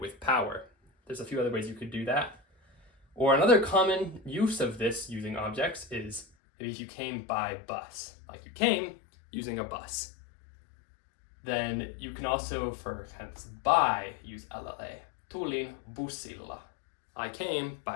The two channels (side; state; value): right; drops out; at 6.2 s